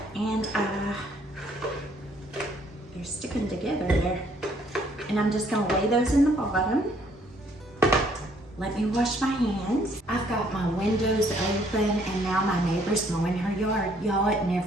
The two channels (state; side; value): normal; both; correlation 0.65